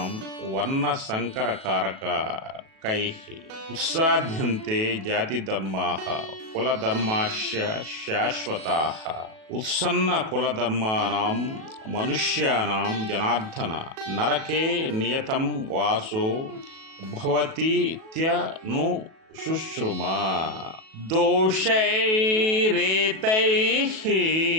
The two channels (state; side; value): late; left; 37 ms